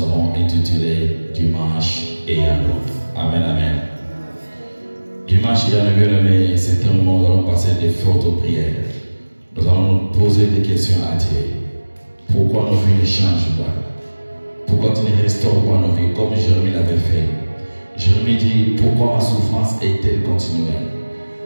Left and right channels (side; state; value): both; inverted; correlation -1.00